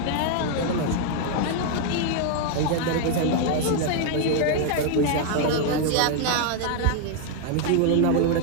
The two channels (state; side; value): different; both; correlation 0.00